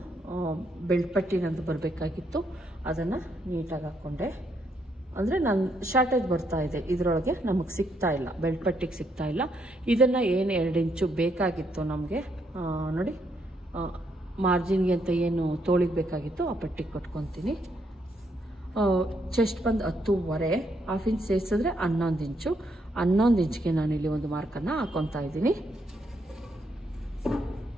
ಬೆಲ್ಟ್ ಪಟ್ಟಿ ನಂದು ಬರಬೇಕಾಗಿತ್ತು, ಅದನ್ನು ನೀಟಾಗಿ ಹಾಕ್ಕೊಂಡೆ. ಅಂದರೆ ನಾನು ಶಾರ್ಟೇಜ್ ಬರ್ತಾ ಇದೆ, ಇದರೊಳಗೆ ನಮಗೆ ಸಿಗ್ತಾ ಇಲ್ಲ, ಬೆಲ್ಟ್ ಪಟ್ಟಿಗೆ ಸಿಗ್ತಾ ಇಲ್ಲ. ಇದನ್ನು ಏನು 2 ಇಂಚು ಬೇಕಾಗಿತ್ತು ನಮಗೆ, ನೋಡಿ ಮಾರ್ಜಿನ್ಗೆ ಅಂತ ಏನು ತೋಳಿಗೆ ಬೇಕಾಗಿತ್ತು ಆ ಪಟ್ಟಿಗೆ ಕೊಟ್ಕೊತೀನಿ. ಚೆಸ್ಟ್ ಬಂದು 10.5, 1/2 ಇಂಚ್ ಸೇರಿಸಿದ್ರೆ 11 ಇಂಚು. 11 ಇಂಚ್ಗೆ ನಾನಿಲ್ಲಿ ಒಂದು ಮಾರ್ಕನ್ನು ಹಾಕ್ಕೊತಾ ಇದ್ದೀನಿ.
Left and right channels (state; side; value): normal; both; correlation 0.75